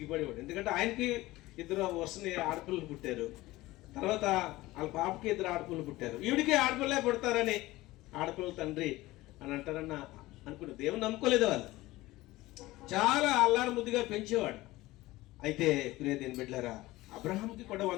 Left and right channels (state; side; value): quieter; right; 18.5 dB